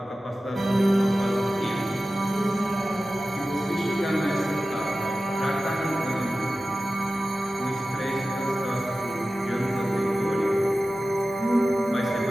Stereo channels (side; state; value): both; normal; correlation 0.95